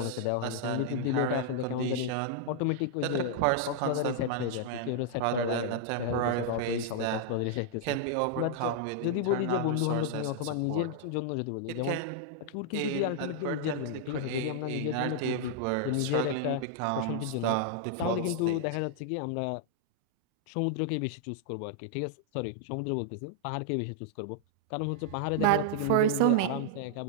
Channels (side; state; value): both; different; correlation -0.01